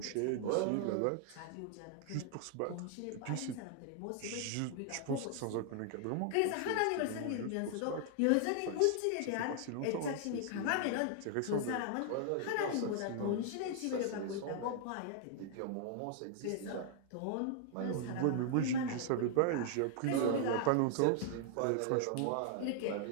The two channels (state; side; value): different; both; correlation 0.00